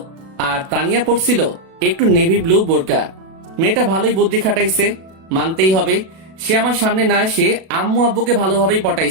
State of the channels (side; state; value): left; late; 37 ms